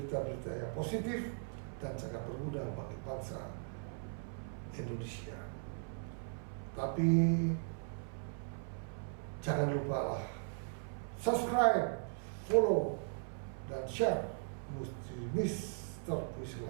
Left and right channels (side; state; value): left; silent; 52 dB below the other